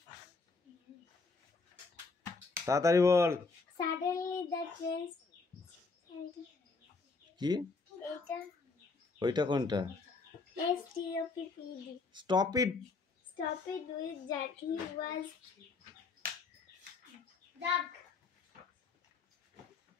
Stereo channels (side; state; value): right; quieter; 4.2 dB